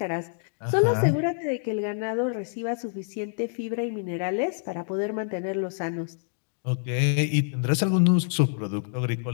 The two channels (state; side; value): silent; right; digital silence